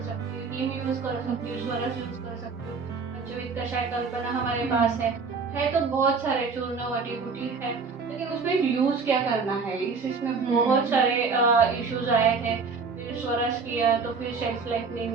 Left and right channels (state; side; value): quieter; left; 4.9 dB